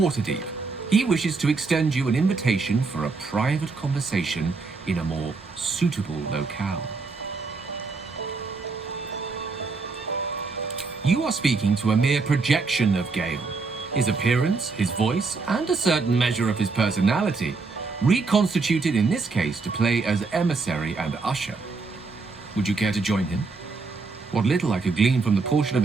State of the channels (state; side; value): quieter; left; 4.2 dB